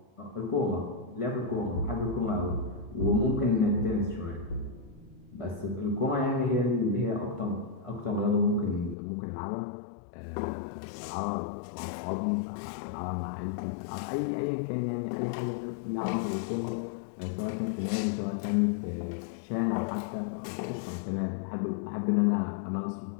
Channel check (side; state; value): right; drops out; at 9.0 s